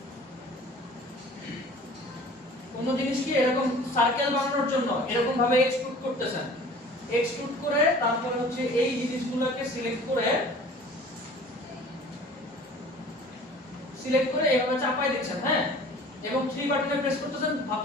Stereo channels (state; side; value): normal; both; correlation 0.46